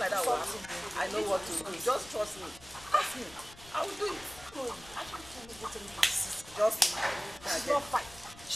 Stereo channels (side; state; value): left; noise; rumble, 21 dB below the sound